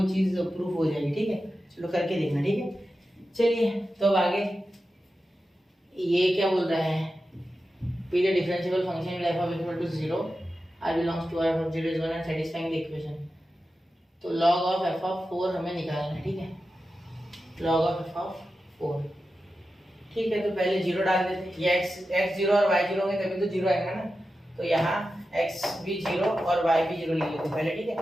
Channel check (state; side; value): normal; both; correlation 0.92